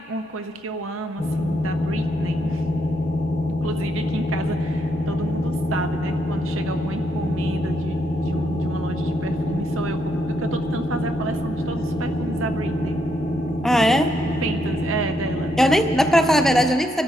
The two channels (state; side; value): normal; both; correlation 0.77